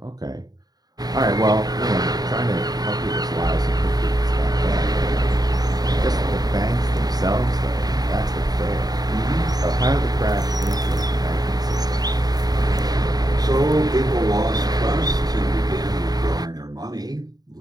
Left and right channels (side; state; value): left; late; 0.19 ms